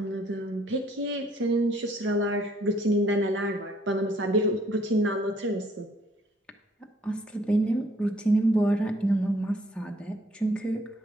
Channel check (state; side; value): normal; both; correlation 0.64